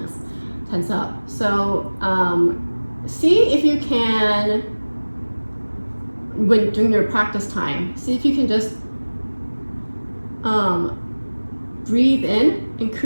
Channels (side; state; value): both; inverted; correlation -1.00